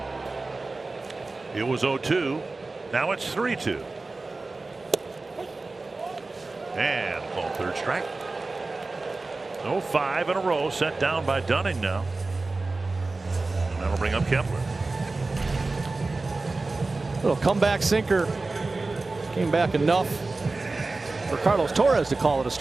It was 0-2. Now it's 3-2. And called third strike. 5 in a row set down by Dunning now. And that'll bring up Kepler. Little comeback sinker. Came back enough for Carlos Torres to call it a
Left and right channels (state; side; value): quieter; left; 3.5 dB